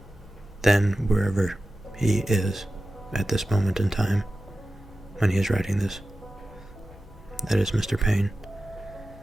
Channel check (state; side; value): normal; both; correlation 0.94